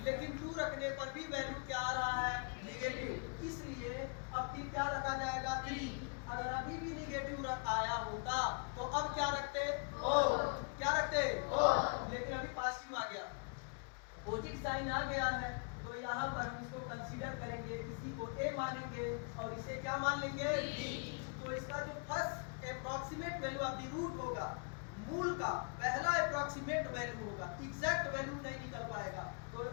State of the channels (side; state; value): right; quieter; 38.4 dB